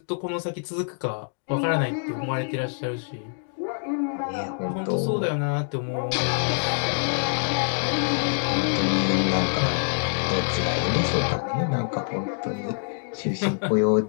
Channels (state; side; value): silent; right; digital silence